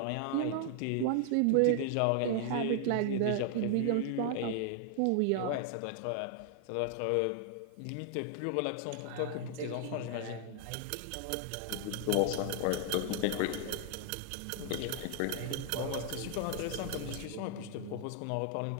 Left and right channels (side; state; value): both; different; correlation 0.00